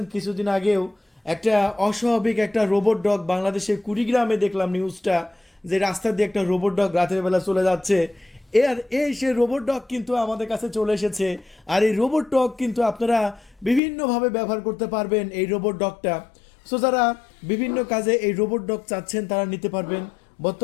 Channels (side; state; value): right; drops out; at 13.8 s